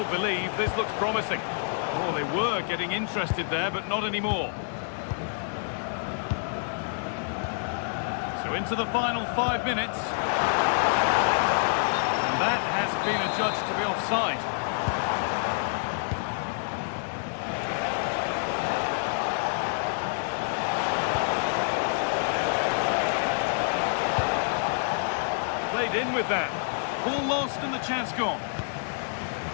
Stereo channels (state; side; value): silent; right; digital silence